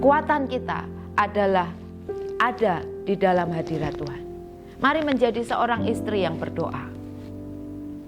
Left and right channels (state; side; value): identical; both; correlation 1.00